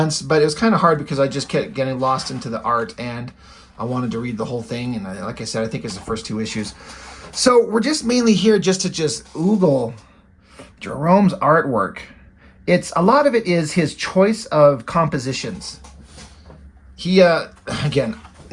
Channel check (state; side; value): identical; both; correlation 1.00